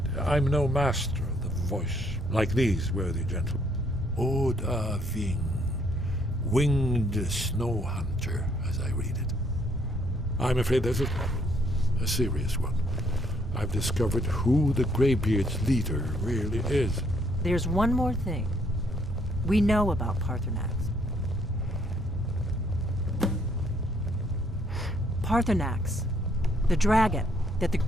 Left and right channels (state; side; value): normal; both; correlation 0.68